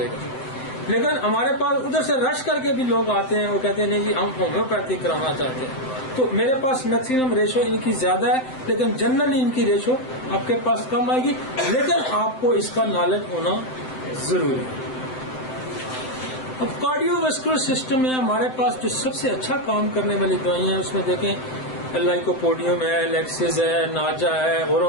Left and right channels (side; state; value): right; late; 7.7 ms